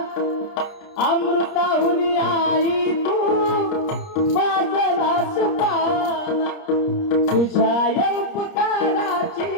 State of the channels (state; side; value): late; right; 30 ms